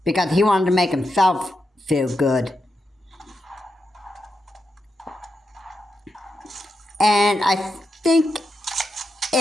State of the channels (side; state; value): both; normal; correlation 0.86